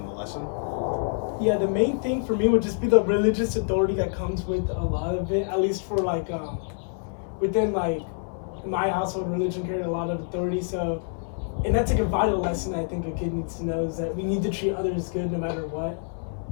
the lesson? Yeah, the main thing for me would just be the religious authority that comes with a lot of it, at least for like, within like my household, religion carried a lot of authority. So, and that's like a vital lesson I think a kid needs to know, is that we need to treat others good no matter what.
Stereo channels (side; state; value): right; silent; 61 dB below the other